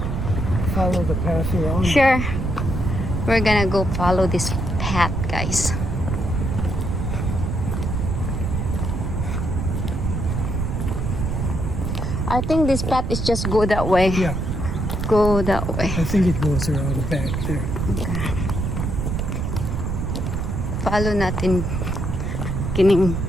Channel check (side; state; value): right; noise; rumble, 1 dB below the sound